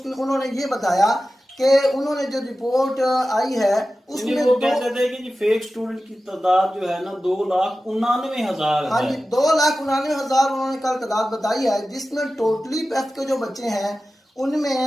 उन्होंने ये बताया कि उन्होंने जो रिपोर्ट आई है उसमें वो कहते थे कि फेक स्टूडेंट की तादाद जो है ना 2,99,000 है। हाँ जी, 2,99,000 उन्होंने कल तादाद बताई है, जिसमें टोटली पैफ के जो बच्चे हैं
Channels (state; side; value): normal; both; correlation 0.94